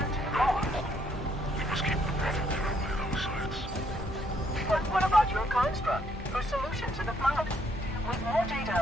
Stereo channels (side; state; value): both; normal; correlation 0.71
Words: to the core. We must keep the Prophet away those sites. But what about your construct? Your solution to the flood? With more